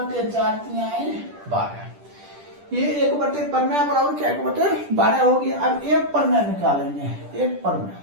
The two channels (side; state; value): left; late; 10 ms